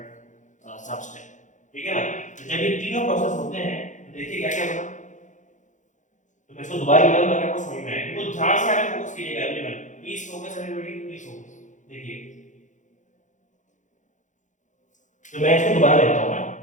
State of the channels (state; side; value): late; right; 0.36 ms